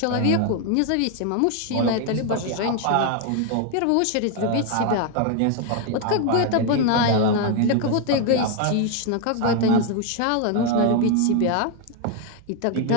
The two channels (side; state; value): both; different; correlation 0.01